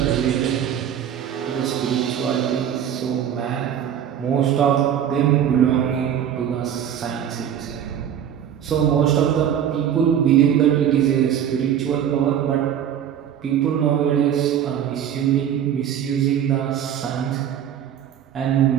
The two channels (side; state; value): left; quieter; 9.5 dB